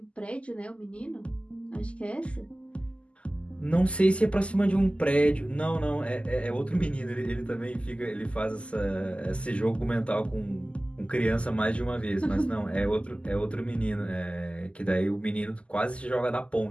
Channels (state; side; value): late; right; 0.056 ms